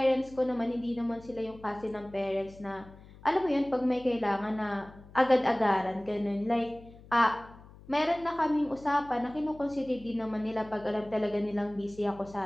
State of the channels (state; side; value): noise; left; hum, 21 dB below the sound